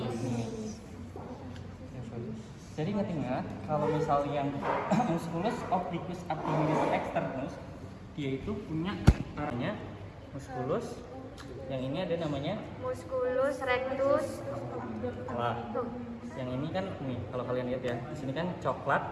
Jadi ingat-ingat kalau misal yang musculus obliquus abdominis externus dia itu punya arahnya musculus. Yang ini ada namanya Musculus rectus. wah. Yang ini kan nih kalau kalian lihat ya, di sini kan coklat,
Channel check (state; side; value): identical; both; correlation 1.00